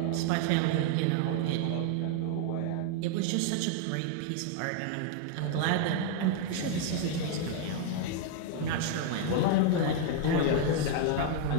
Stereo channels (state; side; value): different; both; correlation 0.00